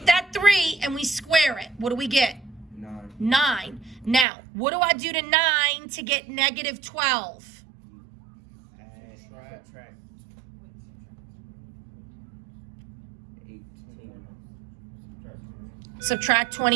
that 3 and we square it. What do we get? 9. 9. Now, what do I do to 9 to get negative 12? Subtract 18. Subtract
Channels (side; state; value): left; drops out; at 4.2 s